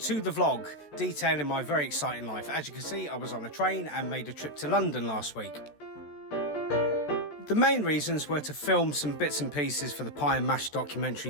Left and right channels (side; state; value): right; late; 14 ms